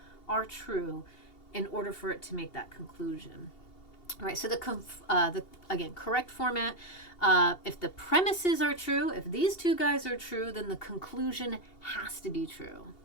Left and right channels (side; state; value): right; late; 2.8 ms